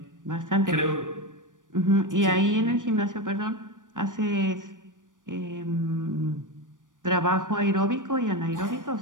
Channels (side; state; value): left; late; 0.88 ms